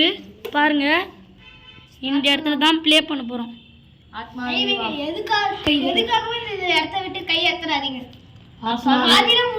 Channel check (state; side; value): identical; both; correlation 1.00